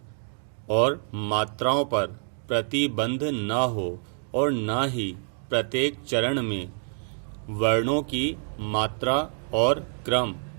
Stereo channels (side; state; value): left; silent; 60 dB below the other